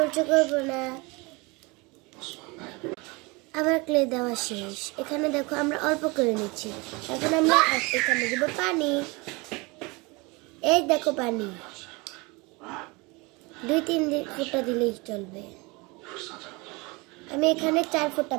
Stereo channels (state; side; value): quieter; left; 26.2 dB